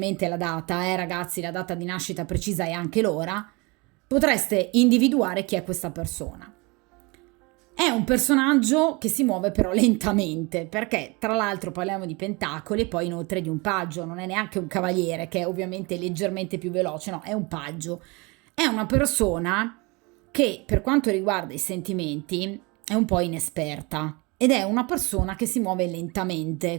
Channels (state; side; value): quieter; left; 27.0 dB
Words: la data, ragazzi, la data di nascita precisa e anche l'ora, potreste individuare chi è questa persona. È un personaggio che si muove però lentamente, perché tra l'altro parliamo di pentacoli e poi inoltre di un paggio, non è neanche un cavaliere che è ovviamente leggermente più veloce, no, è un paggio. È una persona che per quanto riguarda i sentimenti è un po' inesperta ed è una persona che si muove lentamente,